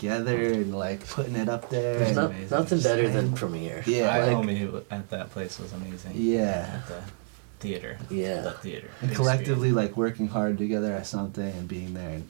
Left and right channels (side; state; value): left; silent; digital silence